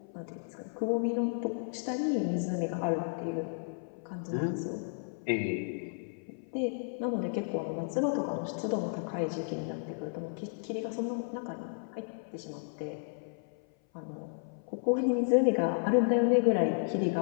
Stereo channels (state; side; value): silent; right; 56 dB below the other